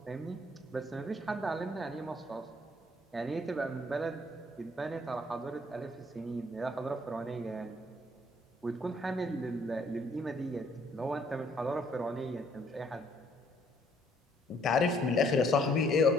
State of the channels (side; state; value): both; normal; correlation 0.65